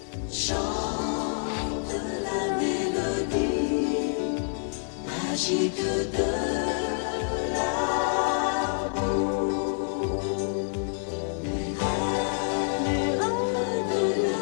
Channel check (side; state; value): right; silent; 60 dB below the other